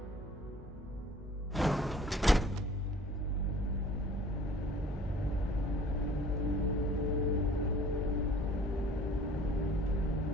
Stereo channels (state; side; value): normal; both; correlation 0.51